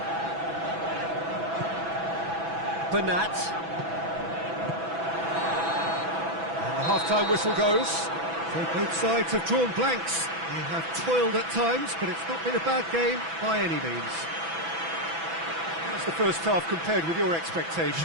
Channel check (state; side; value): late; left; 6.0 ms